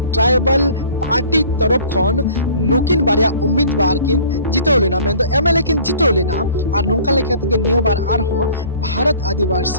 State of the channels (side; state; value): both; inverted; correlation -0.49